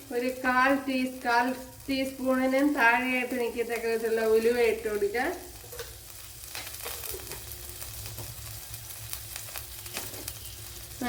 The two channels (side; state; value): both; identical; correlation 1.00